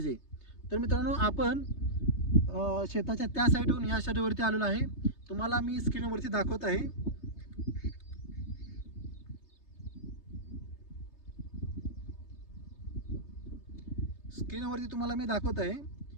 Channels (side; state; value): right; late; 3.3 ms